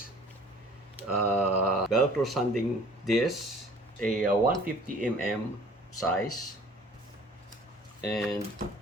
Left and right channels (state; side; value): normal; both; correlation 0.50